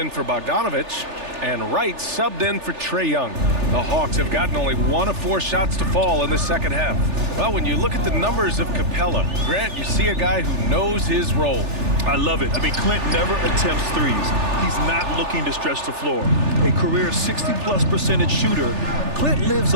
for Bogdanovich. And Wright subbed in for Trae Young. The Hawks have gotten only 1 of 4 shots to fall in the second half. Well, when you look at the numbers of Capella, Grant, you see a guy who knows his role. I love it. I mean, Clint never attempts threes. He's not looking to stretch the floor. A career 60+% shooter, Clint lives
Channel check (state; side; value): late; left; 3.4 ms